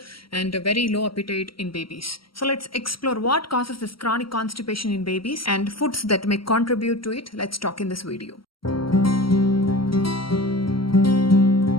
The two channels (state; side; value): late; right; 0.74 ms